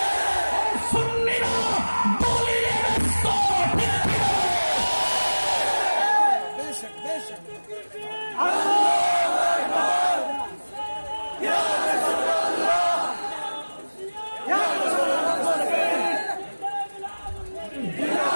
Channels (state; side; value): inverted; both; correlation -1.00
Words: সুন্নিরা দলিলে ব্যস্ত।